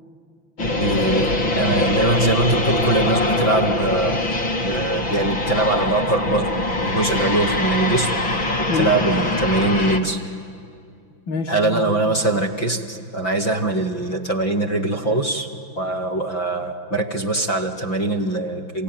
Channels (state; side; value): late; right; 5.9 ms